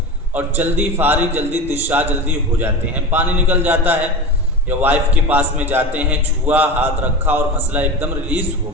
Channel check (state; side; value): normal; both; correlation 0.27